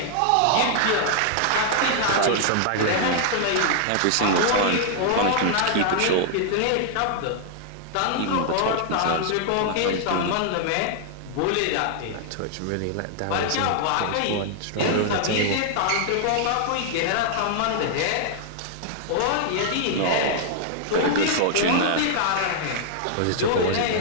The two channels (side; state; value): both; different; correlation -0.01